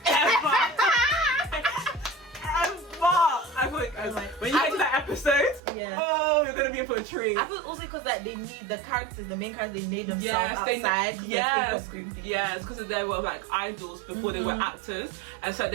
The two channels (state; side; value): drops out; left; at 5.6 s